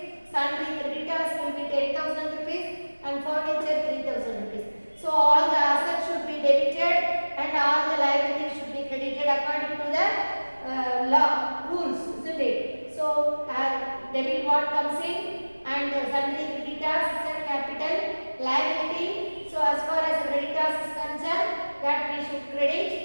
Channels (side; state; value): both; inverted; correlation -1.00